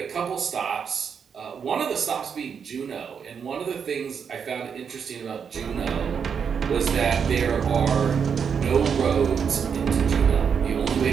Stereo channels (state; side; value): quieter; left; 6.8 dB